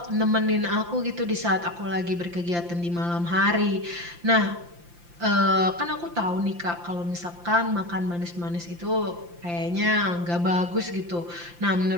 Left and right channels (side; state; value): left; late; 5.8 ms